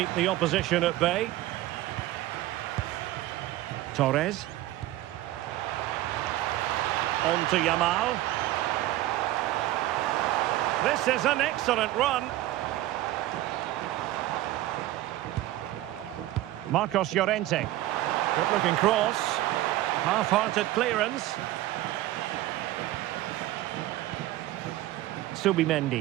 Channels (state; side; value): quieter; left; 15.5 dB